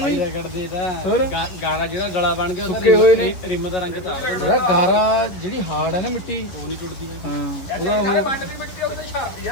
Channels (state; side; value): late; right; 11 ms